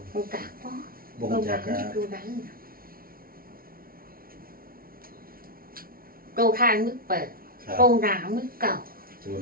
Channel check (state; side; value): late; left; 0.43 ms